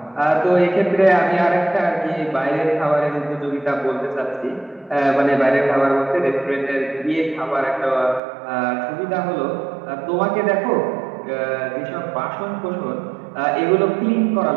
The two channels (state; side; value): drops out; left; at 8.2 s